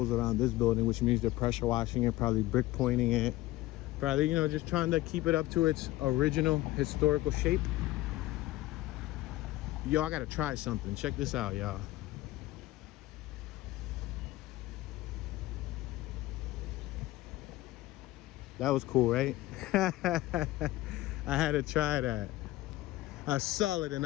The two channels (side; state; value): right; quieter; 17.3 dB